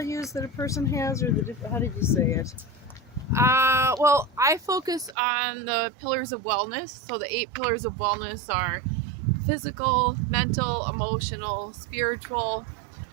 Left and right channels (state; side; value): drops out; left; at 5.2 s